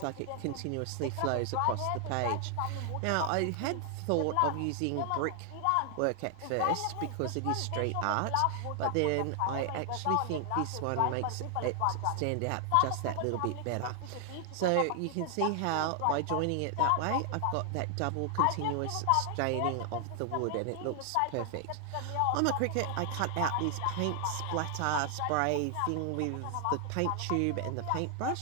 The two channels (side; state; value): both; different; correlation 0.00